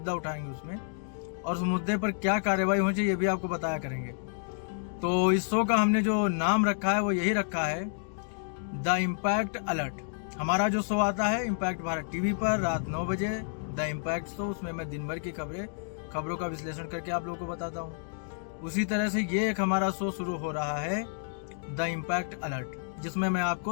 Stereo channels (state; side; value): silent; right; digital silence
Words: उठाएंगे उसमें, और उस मुद्दे पर क्या कार्रवाई होनी चाहिए ये भी आपको बताया करेंगे। तो इस शो का हमने जो नाम रखा है वो यही रखा है, द इम्पैक्ट अलर्ट। हमारा जो शो आता है इम्पैक्ट भारत टीवी पर रात 9 बजे, द इम्पैक्ट शो, उसमें मैं दिन भर की खबरों का विश्लेषण करके आप लोगों को बताता हूँ। उसी तरह से ये एक हमारा शो शुरू हो रहा है, द इम्पैक्ट अलर्ट, जिसमें मैं